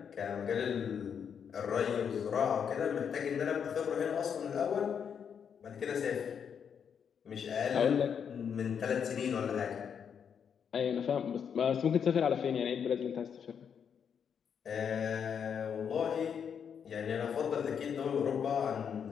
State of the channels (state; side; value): quieter; right; 7.4 dB